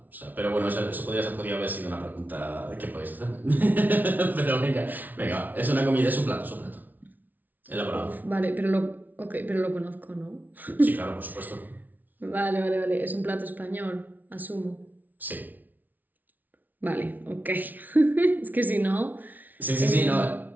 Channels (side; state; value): left; late; 0.081 ms